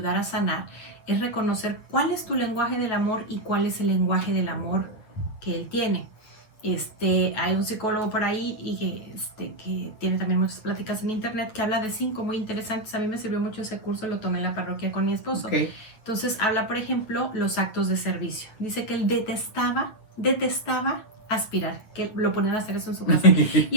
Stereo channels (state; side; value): late; right; 9.2 ms